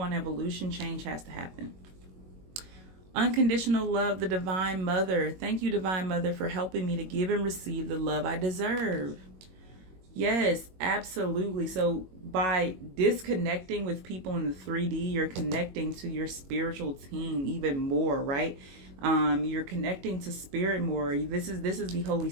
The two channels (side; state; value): left; late; 22 ms